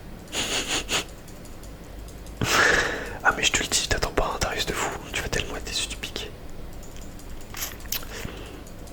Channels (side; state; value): both; identical; correlation 1.00